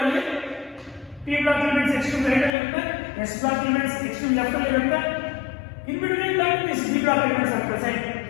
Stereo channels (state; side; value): drops out; right; at 2.6 s